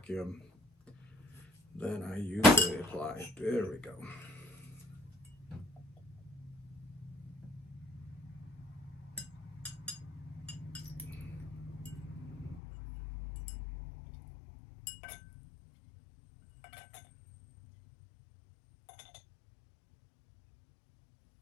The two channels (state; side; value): drops out; right; at 12.6 s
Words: than I usually apply. There we go.